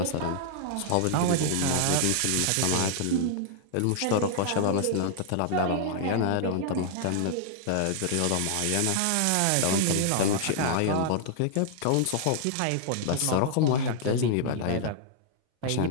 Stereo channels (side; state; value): both; different; correlation -0.01